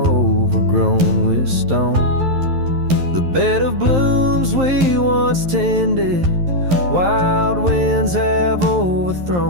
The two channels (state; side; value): late; left; 11 ms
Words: overgrown with stone. The bed of blooms we once tended, wild winds have